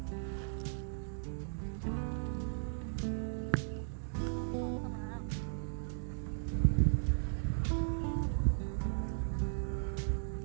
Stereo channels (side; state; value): left; silent; digital silence